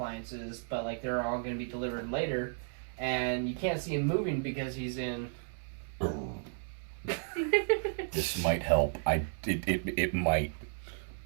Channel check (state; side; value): silent; left; digital silence